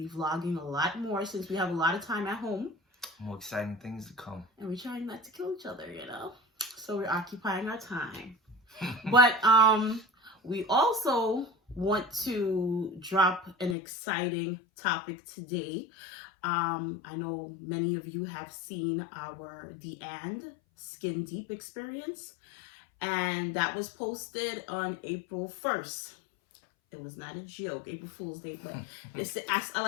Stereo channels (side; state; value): right; drops out; at 13.8 s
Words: vlogging a lot more since we have a lot of time at home. More exciting things to come. And we're trying not to kill each other, So we're occupying our time. But we also want to drop an exciting topic today. I know many of you have seen our The And Skin Deep experience. And that was posted on April 1st. It was not a joke, April Fool's Day, but I